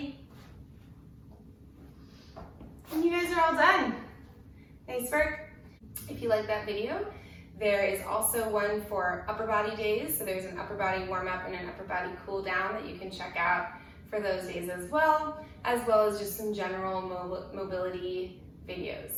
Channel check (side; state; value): both; identical; correlation 1.00